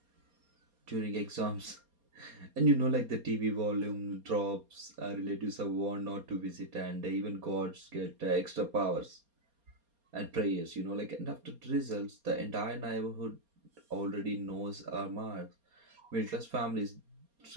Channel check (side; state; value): left; late; 4.3 ms